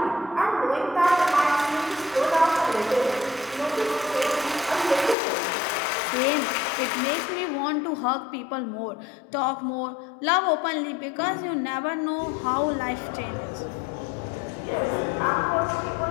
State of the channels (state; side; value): drops out; right; at 5.2 s